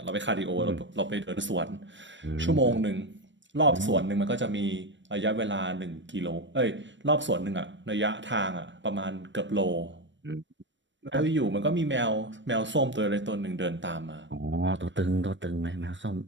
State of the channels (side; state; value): left; late; 0.54 ms